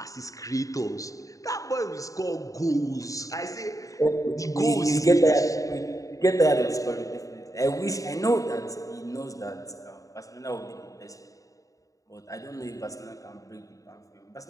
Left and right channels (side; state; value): right; late; 0.16 ms